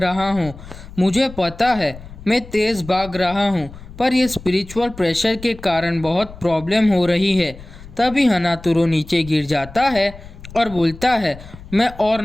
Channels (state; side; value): noise; left; rumble, 16 dB below the sound